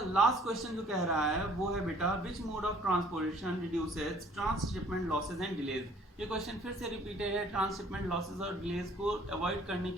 लास्ट क्वेश्चन जो कह रहा है वो है बेटा which mode of transportation reduces transshipment losses and delays. ये क्वेश्चन फिर से रिपीटेड है। ट्रांसशिपमेंट लॉसेज और डिलेज को अवॉइड करने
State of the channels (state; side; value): normal; both; correlation 0.56